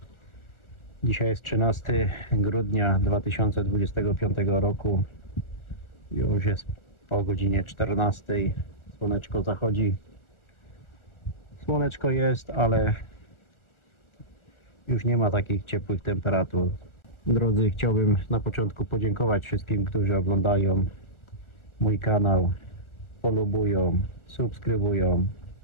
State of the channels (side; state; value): right; late; 1.4 ms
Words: Dzisiaj jest 13 grudnia 2025 roku. Już jest po godzinie 14. Słoneczko zachodzi. Słoneczko jest, ale już nie ma takich ciepłych temperatur. Drodzy, chciałbym na początku podziękować wszystkim, którzy oglądają mój kanał, polubują, subskrybują.